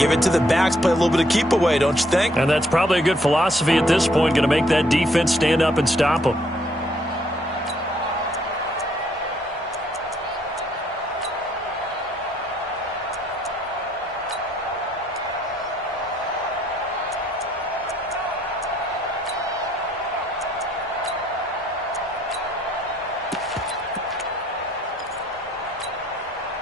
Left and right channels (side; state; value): both; normal; correlation 0.68